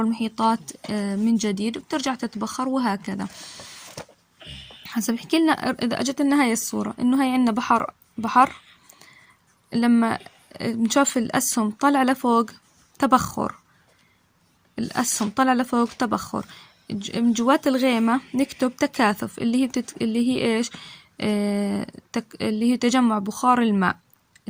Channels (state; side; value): identical; both; correlation 1.00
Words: من جديد، وبترجع تتبخر وهكذا. حسب بحكي لنا إذا أجت لنا هاي الصورة إنه هاي عنا بحر لما نشوف الأسهم طلع لفوق تبخر. الأسهم طلع لفوق تبخر. من جوات الغيمة نكتب تكاثف اللي هي إيش؟ اللي هي تجمع بخار الماء.